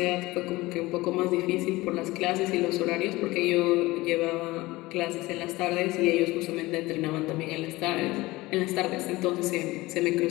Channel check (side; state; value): right; quieter; 20.1 dB